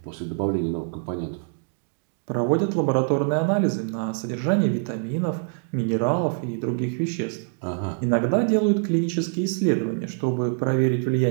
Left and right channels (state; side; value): silent; left; 58 dB below the other